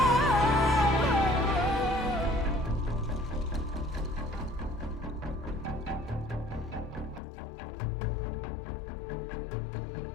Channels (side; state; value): right; drops out; at 7.2 s